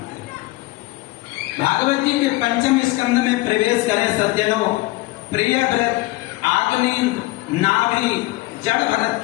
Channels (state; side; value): quieter; right; 20.1 dB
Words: हैं। भागवत जी के पंचम स्कंद में प्रवेश करें सज्जनों। प्रियव्रत, आग्नेय, नाभि, जड़ भरत